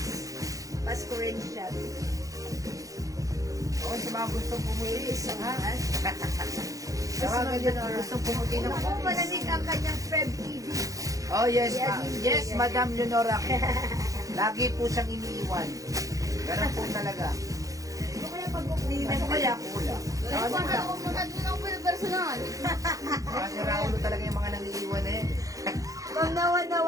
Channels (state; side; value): late; left; 0.16 ms